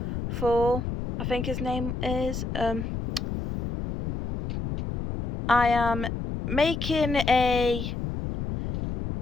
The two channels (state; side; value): noise; left; rumble, 5 dB below the sound